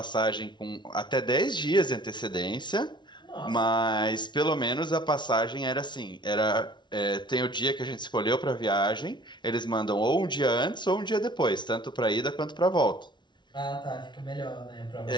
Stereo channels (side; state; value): right; late; 0.22 ms